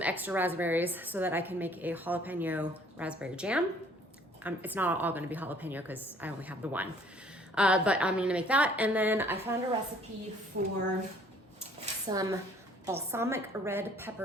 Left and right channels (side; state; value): both; normal; correlation 0.58